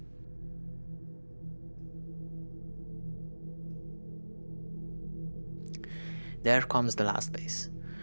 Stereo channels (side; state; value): both; inverted; correlation -1.00